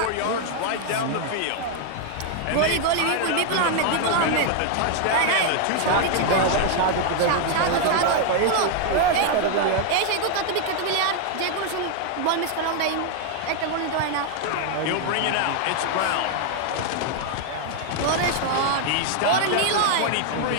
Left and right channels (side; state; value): both; different; correlation 0.00